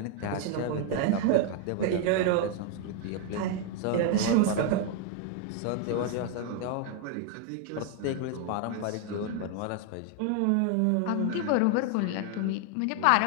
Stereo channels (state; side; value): different; both; correlation 0.00